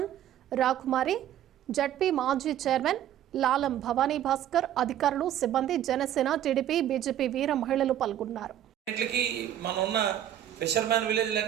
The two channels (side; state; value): left; quieter; 11.3 dB